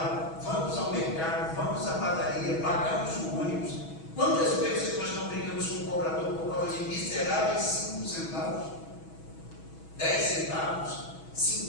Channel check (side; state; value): right; late; 6.2 ms